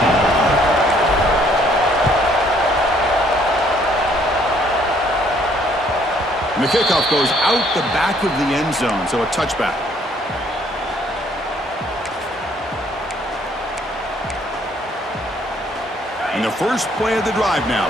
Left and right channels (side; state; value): both; normal; correlation 0.64